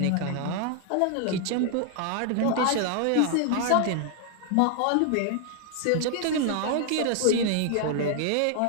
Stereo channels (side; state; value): both; different; correlation 0.00